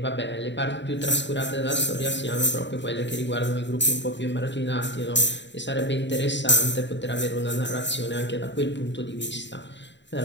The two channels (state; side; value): late; right; 0.52 ms